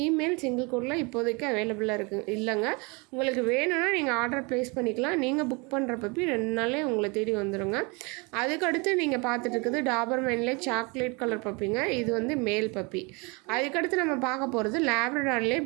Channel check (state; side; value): quieter; left; 29.1 dB